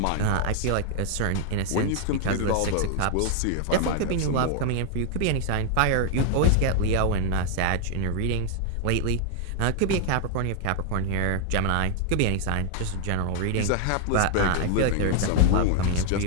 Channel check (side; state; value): both; different; correlation 0.00